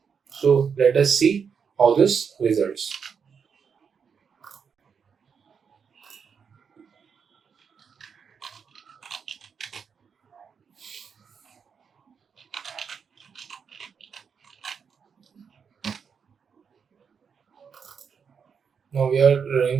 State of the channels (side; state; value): left; quieter; 6.5 dB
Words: So let us see how this results. Now we are running